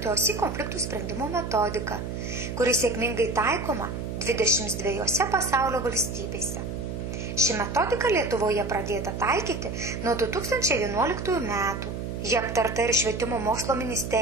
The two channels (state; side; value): noise; right; hum, 5 dB below the sound